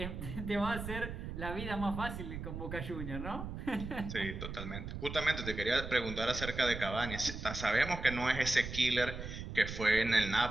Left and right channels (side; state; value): right; noise; rumble, 7 dB below the sound